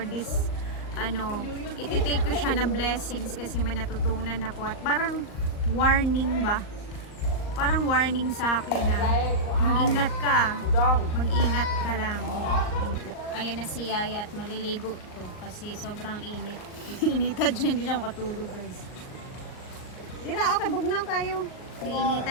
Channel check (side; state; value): right; late; 39 ms